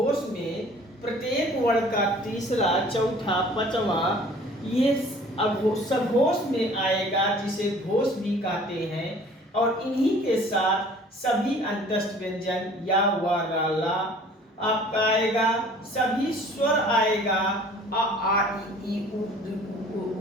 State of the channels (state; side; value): normal; both; correlation 0.50